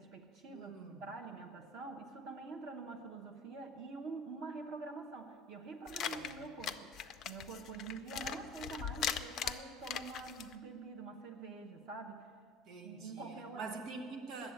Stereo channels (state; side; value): normal; both; correlation 0.43